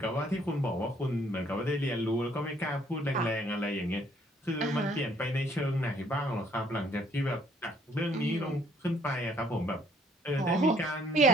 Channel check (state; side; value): normal; both; correlation 0.63